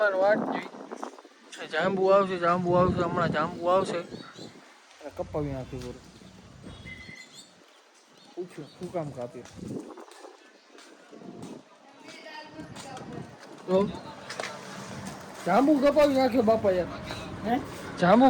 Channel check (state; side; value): identical; both; correlation 1.00